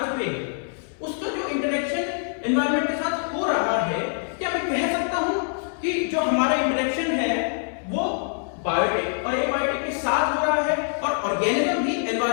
पे, उसका जो इंटरेक्शन एनवायरनमेंट के साथ हो रहा है, क्या मैं कह सकता हूं कि जो हमारा इंटरेक्शन है वो बायोटिक और एबायोटिक के साथ हो रहा है, और ऑर्गेनिज्म भी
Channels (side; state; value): right; silent; 62 dB below the other